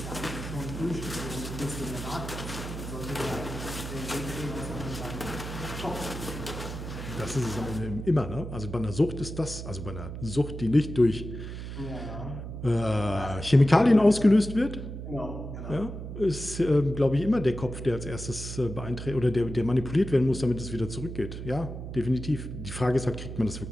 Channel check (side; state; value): right; noise; hum, 8 dB below the sound